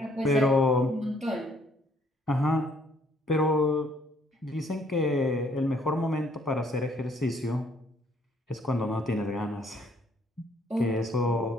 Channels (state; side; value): normal; both; correlation 0.65